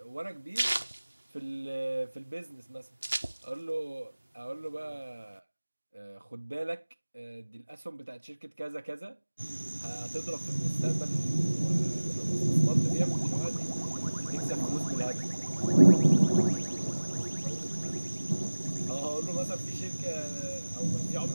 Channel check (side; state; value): both; inverted; correlation -1.00